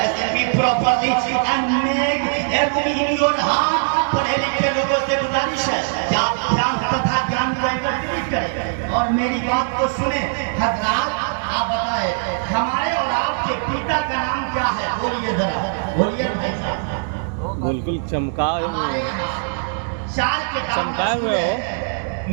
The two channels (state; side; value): silent; left; digital silence